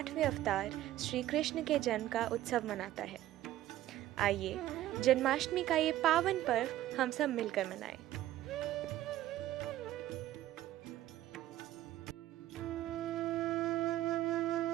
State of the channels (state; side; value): quieter; left; 14.2 dB